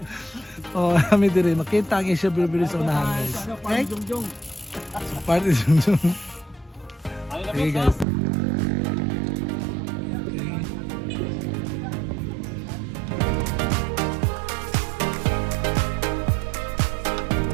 Oh, kami dire makita ang Asia Bilbili sa unahan guys. Okay? So, party Jungjung. Okay guys.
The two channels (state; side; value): drops out; left; at 8.1 s